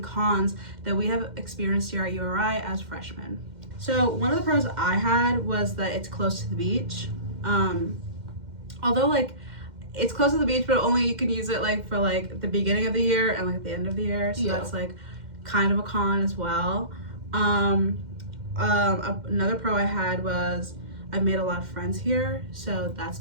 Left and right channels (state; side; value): late; left; 2.1 ms